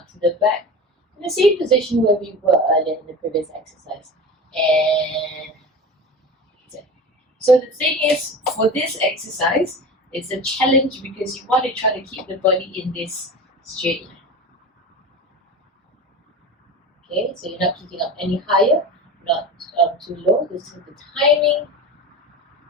to the back in the same position where we were earlier in the previous exercise, and return. So the thing is, for this exercise, it's a challenge because you want to try to keep the body in this straight line. Okay, so you're not kicking up any higher, not too low. This is the timing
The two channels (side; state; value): both; normal; correlation 0.31